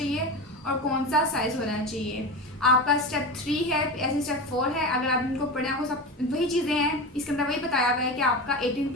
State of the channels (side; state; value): both; normal; correlation 0.25